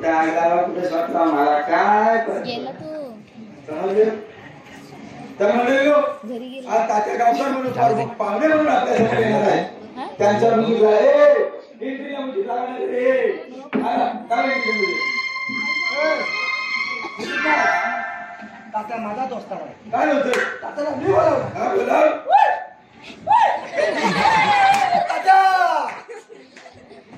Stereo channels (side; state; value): both; identical; correlation 1.00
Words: आग लावा, कुठे स्वतः मला काय समजलं. तर म्हणलो आज तात्या गावकर म्हणून पाहुणे म्हणून आपल्या समोर येणार आहे त्यांच्या मुलीला एंट्री म्हणजे लागणार रे काय तात्या माझा दोस्त आहे. काय होतं तात्याला मी बोलावलं. हा बोला तात्या